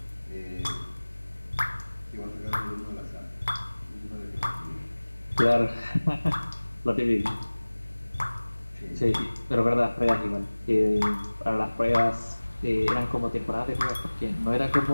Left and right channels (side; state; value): both; inverted; correlation -1.00